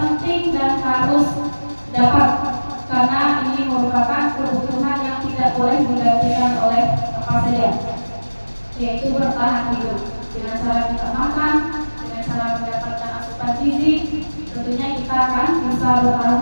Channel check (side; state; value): both; inverted; correlation -1.00